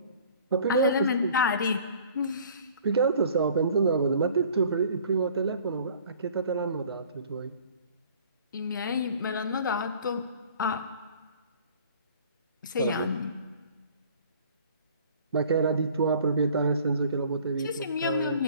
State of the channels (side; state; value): both; inverted; correlation -0.51